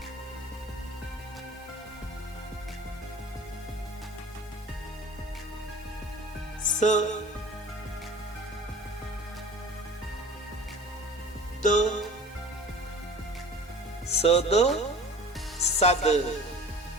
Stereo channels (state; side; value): normal; both; correlation 0.42